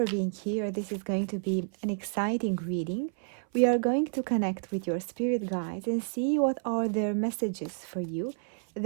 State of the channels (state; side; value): silent; left; 58 dB below the other